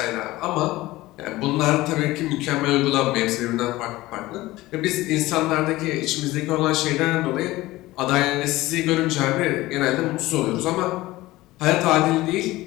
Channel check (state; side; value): quieter; right; 18.3 dB